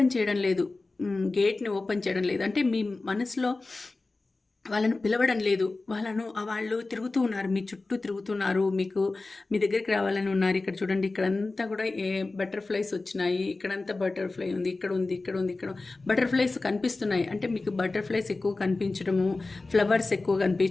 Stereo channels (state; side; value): quieter; right; 3.4 dB